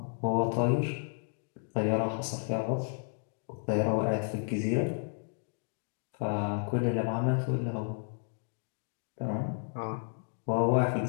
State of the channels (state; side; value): silent; right; 56 dB below the other